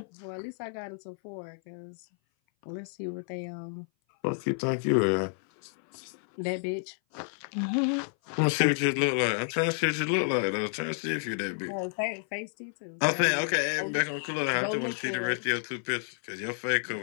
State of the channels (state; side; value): silent; right; 57 dB below the other